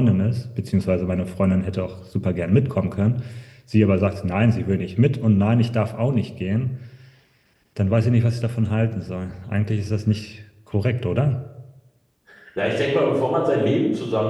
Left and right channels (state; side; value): identical; both; correlation 1.00